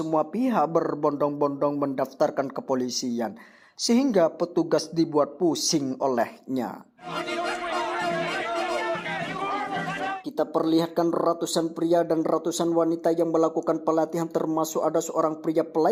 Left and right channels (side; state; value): both; identical; correlation 1.00